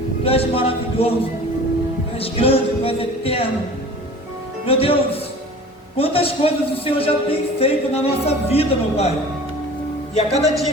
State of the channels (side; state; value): both; normal; correlation 0.42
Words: Tu és maravilhoso, tu és grande, tu és eterno. Meu Deus, quantas coisas o Senhor já tem feito na nossa vida, meu Pai. E a cada dia